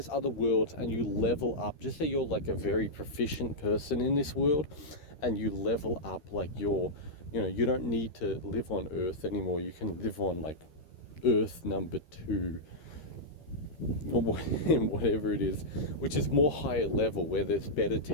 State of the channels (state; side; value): late; right; 13 ms